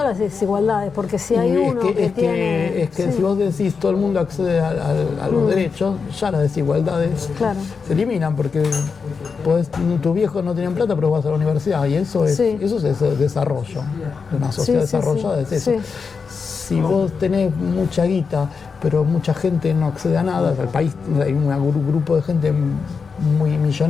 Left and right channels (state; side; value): quieter; right; 5.3 dB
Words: las desigualdades, porque si hay uno que si vos decís todo el mundo accede a los derechos, ya las desigualdades se eliminan, porque tus viejos no tienen plata, pero vas a la universidad, y eso es desarrollo. Una sociedad desarrollada es eso. Si vos tenés mucha guita, pero mucha gente no accede a nada, el país hay un grupo de gente muy